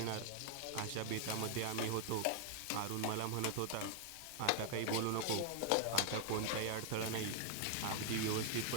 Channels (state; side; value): different; both; correlation 0.00